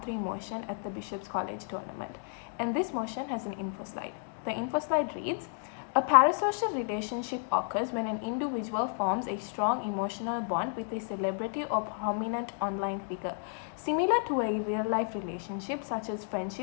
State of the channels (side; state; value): right; silent; digital silence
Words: 3 motion at the Bishop's College tournament, and this motion has an info slide. The info slide reads, a parasocial relationship occurs when an individual forms a strong emotional bond with a celebrity or prominent online figure, similar to a real-life relationship such as